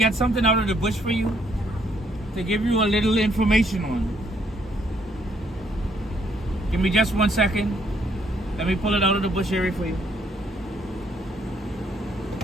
something out of the bush for you, to give you a little information on. Give me just 1 second. Let me pull it out of the bush area for you.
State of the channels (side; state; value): both; normal; correlation 0.69